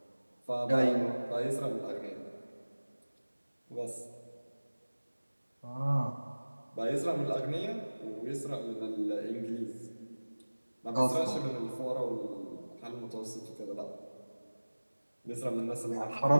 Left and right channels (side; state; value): both; inverted; correlation -1.00